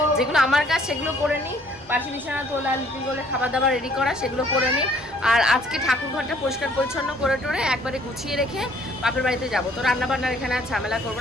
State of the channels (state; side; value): normal; both; correlation 0.60